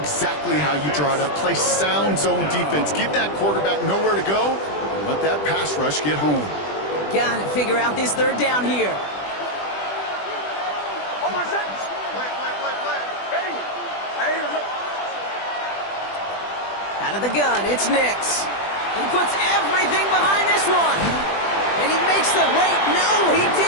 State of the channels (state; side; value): late; right; 20 ms